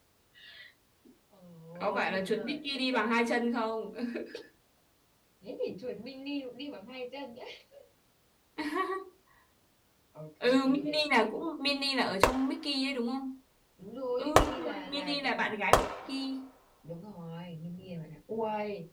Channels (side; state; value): both; identical; correlation 1.00